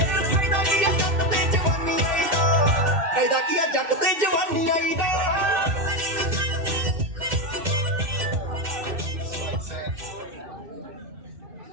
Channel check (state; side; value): late; left; 2.7 ms